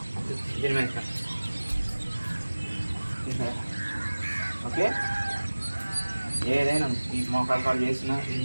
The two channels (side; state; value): both; inverted; correlation -1.00